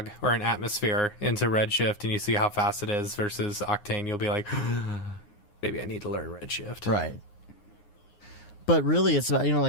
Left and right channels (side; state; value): right; late; 9.6 ms